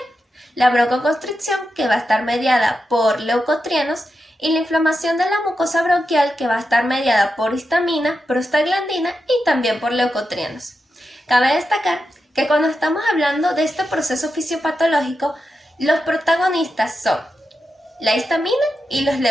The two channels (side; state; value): both; normal; correlation 0.88